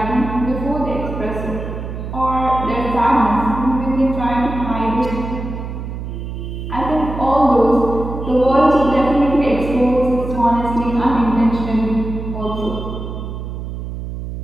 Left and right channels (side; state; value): right; noise; hum, 7 dB below the sound